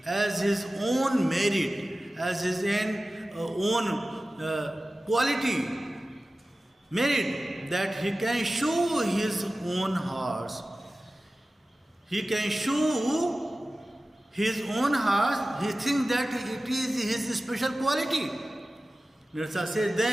as his own merit, as his own quality, merit, that he can show his own horse. He can show his own horse. He thinks that it is his special quality. Nerissa says,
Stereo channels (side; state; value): both; normal; correlation 0.96